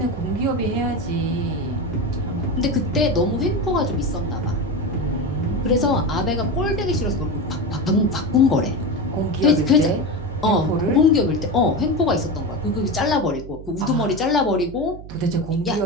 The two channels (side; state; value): right; noise; hum, 14 dB below the sound